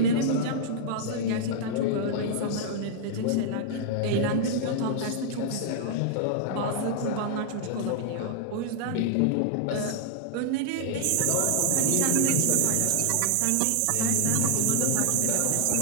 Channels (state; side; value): different; both; correlation 0.00